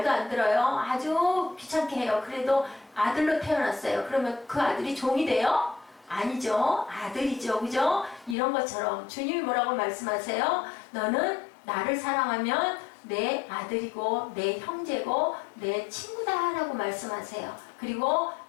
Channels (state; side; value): drops out; right; at 8.3 s